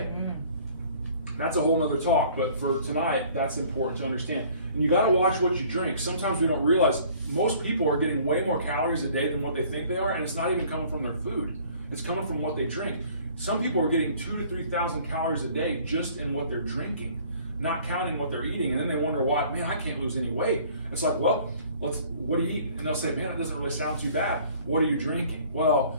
That's a whole nother talk, but for tonight, that's important to understand. And you gotta watch what you drink. Sometimes we don't realize most people are getting way more calories a day than what they think they are, and it's not even coming from their food. It's coming from what they drink. Some people are getting 2,000 to 3,000 calories a day just in what they're drinking, not counting what they're eating, and then they wonder why, man, I can't lose any weight. It's like, well, what do you eat? And they'll say, man, it doesn't really sound too bad. What are you drinking? Well,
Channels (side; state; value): both; inverted; correlation -0.54